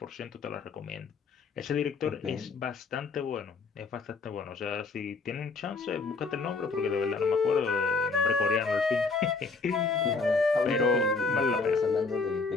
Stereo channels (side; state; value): right; quieter; 4.2 dB